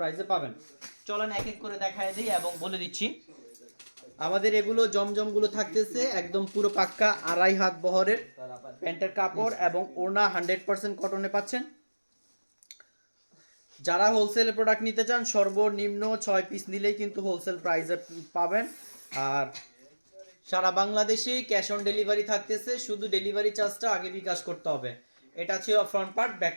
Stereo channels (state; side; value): inverted; both; correlation -1.00